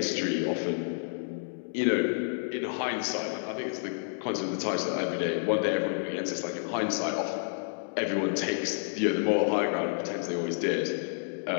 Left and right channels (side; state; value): right; silent; digital silence